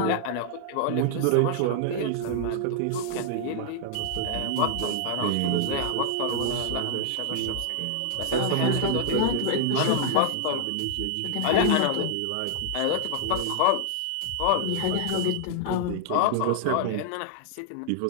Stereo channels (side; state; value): both; different; correlation 0.00